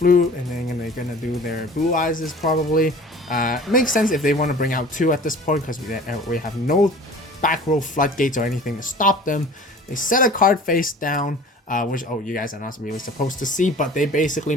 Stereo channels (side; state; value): both; normal; correlation 0.44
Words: and then they're gonna do their blue eyes probably. It makes sense if they want to bring out 2 at this point, because we have no back row floodgates or anything to stop them. They set a card face down, which you guys are not really supposed to see, but they basically